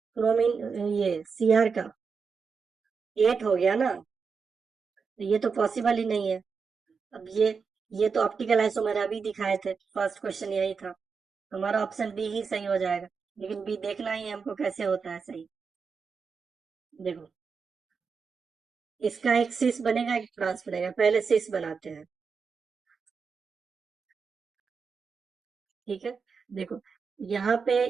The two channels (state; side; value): quieter; left; 5.5 dB